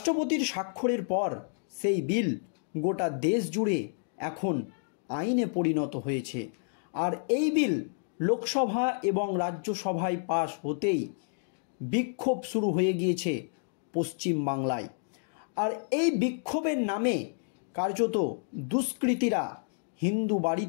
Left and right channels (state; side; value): silent; right; digital silence